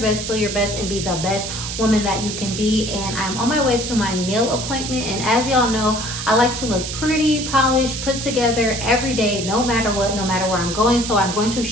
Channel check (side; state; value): right; noise; hiss, 6 dB below the sound